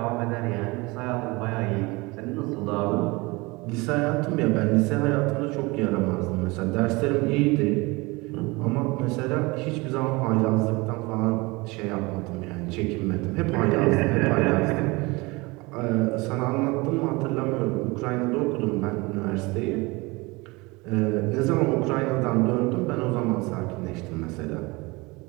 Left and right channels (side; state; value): left; quieter; 24.3 dB